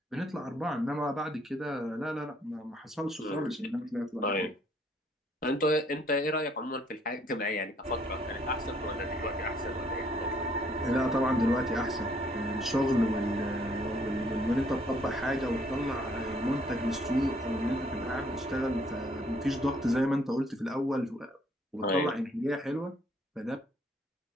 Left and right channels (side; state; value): both; normal; correlation 0.65